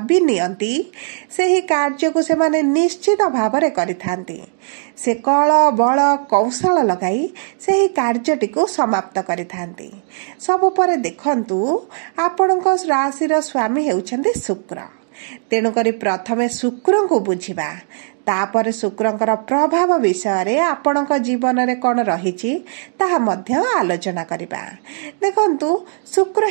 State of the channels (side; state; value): left; silent; digital silence